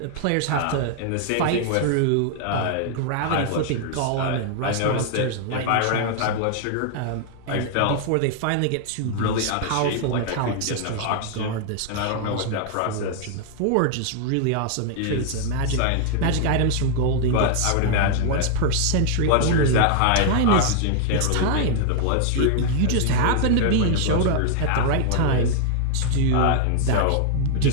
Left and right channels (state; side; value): different; both; correlation 0.00